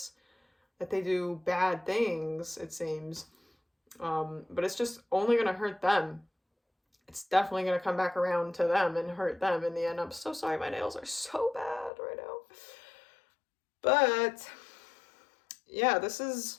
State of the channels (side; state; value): right; drops out; at 11.9 s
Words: that they do bad things, it seems. But it's just only going to hurt them. It's definitely going to come back around to them and hurt them in the end. I'm so sorry, my nails are so bad right now. But yeah, this